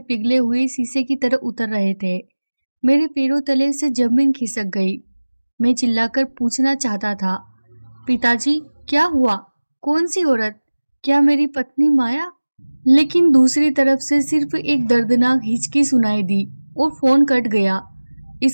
पिघले हुए शीशे की तरह उतर रहे थे। मेरे पैरों तले से जमीन खिसक गई। मैं चिल्लाकर पूछना चाहता था, पिताजी क्या हुआ? कौन सी औरत? क्या मेरी पत्नी माया? लेकिन दूसरी तरफ से सिर्फ एक दर्दनाक हिचकी सुनाई दी और फोन कट गया।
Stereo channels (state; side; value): inverted; both; correlation -1.00